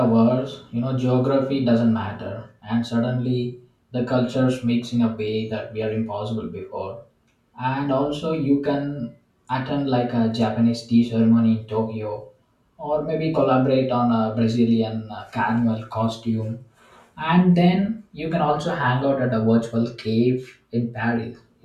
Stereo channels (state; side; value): identical; both; correlation 1.00